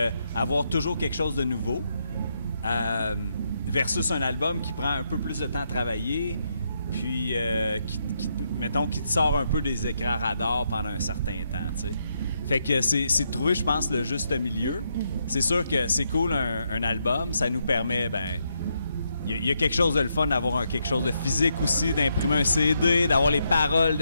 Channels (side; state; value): both; inverted; correlation -0.79